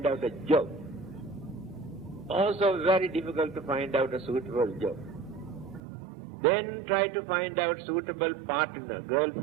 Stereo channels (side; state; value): left; drops out; at 5.8 s